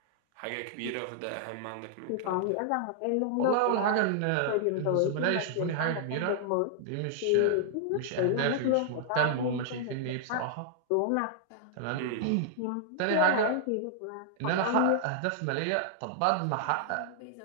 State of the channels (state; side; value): different; both; correlation -0.01